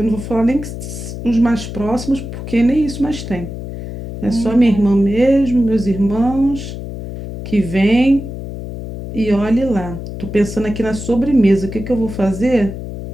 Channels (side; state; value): left; noise; hum, 9 dB below the sound